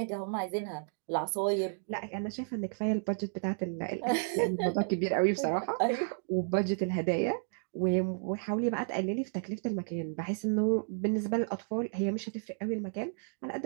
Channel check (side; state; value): left; silent; digital silence